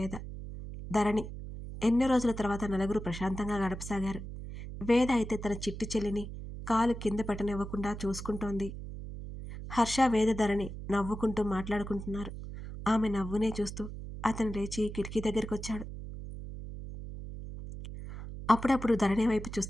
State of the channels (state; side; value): noise; right; hum, 9 dB below the sound